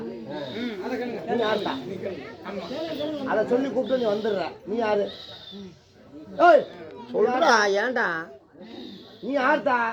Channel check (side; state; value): both; identical; correlation 1.00